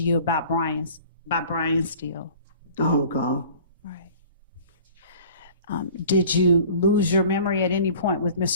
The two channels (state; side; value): inverted; both; correlation -0.46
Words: you about Brian Steele? I don't recall. Right. Did you lose your memory at any point with